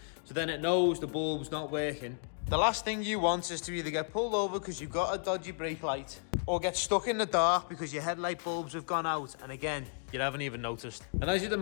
so then it knows the bulb's not working. The last thing you want is to either get pulled over because you've got a dodgy brake light, or get stuck in the dark because your headlight bulbs have gone out, and again, you haven't even noticed. And as you'd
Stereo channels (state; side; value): silent; right; digital silence